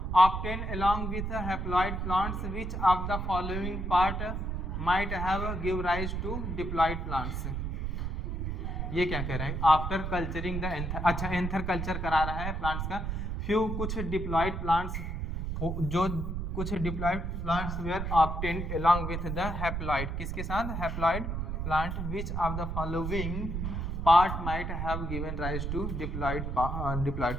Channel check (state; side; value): noise; right; rumble, 3 dB below the sound